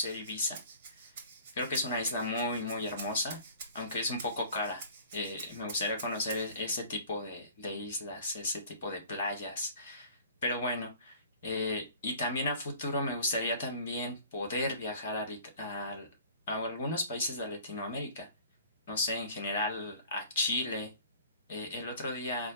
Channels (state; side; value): inverted; both; correlation -0.47